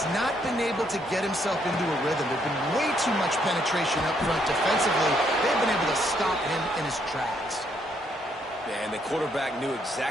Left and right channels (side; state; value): both; normal; correlation 0.72